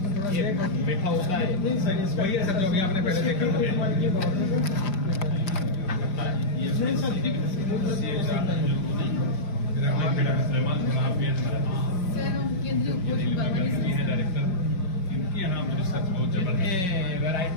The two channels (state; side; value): late; right; 5.4 ms